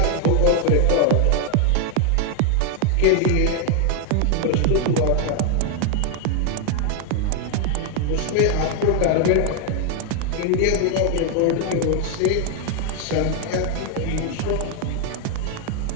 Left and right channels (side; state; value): both; different; correlation 0.00